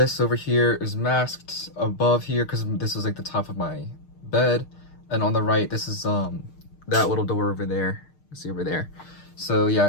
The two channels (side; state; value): right; late; 6.6 ms